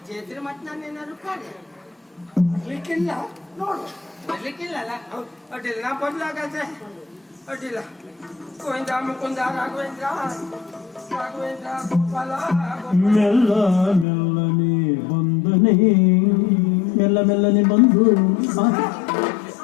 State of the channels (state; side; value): drops out; right; at 14.1 s